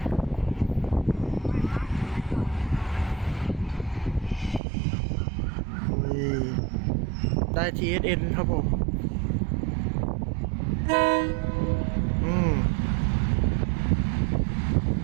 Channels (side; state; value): left; drops out; at 4.6 s